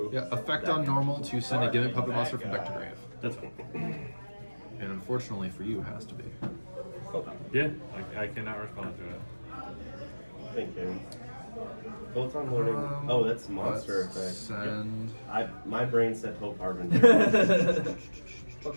Yeah. Effect on normal to send a gimmick puppet monster from deck to grave. That's fine. And unfortunately for you, it has to be. Yeah, I cannot respond to it. Thank you. Photon loading. Oh, that's monster Let's effect. Send. My brain said Hope Harbinger.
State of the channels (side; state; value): both; inverted; correlation -1.00